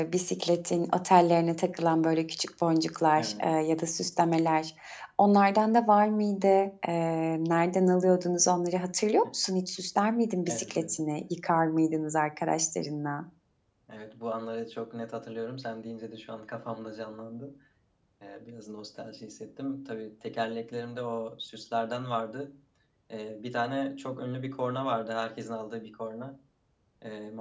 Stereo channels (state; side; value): identical; both; correlation 1.00